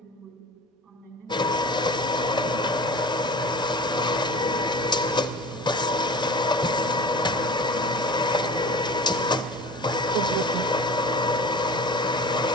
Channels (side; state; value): both; normal; correlation 0.38